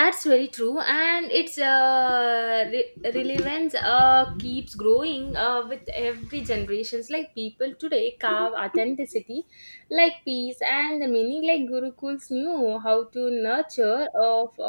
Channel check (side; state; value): both; inverted; correlation -1.00